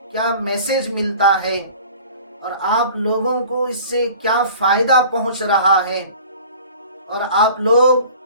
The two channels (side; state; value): both; inverted; correlation -0.44